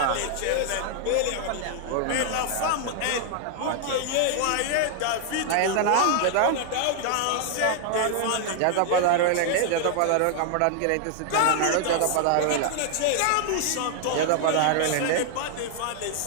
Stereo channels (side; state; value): both; different; correlation 0.00